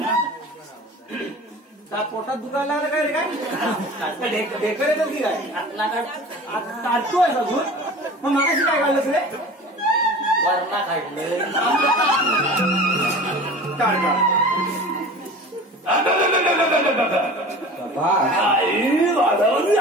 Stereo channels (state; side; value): normal; both; correlation 0.38